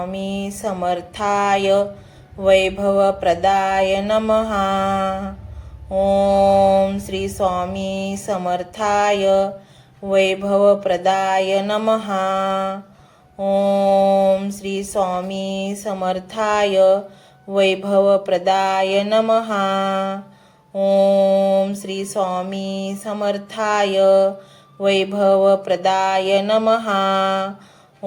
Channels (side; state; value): both; identical; correlation 1.00